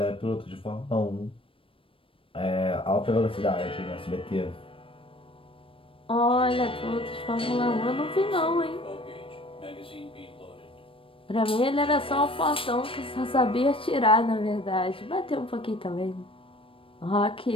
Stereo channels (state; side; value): late; right; 0.26 ms